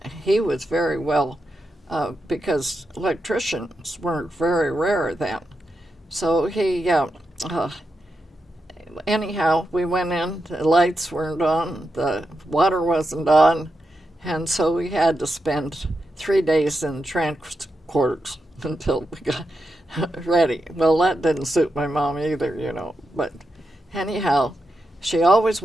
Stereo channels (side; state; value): both; normal; correlation 0.86